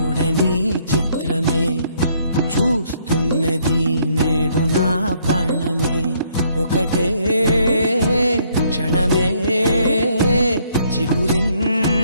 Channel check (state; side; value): inverted; both; correlation -0.68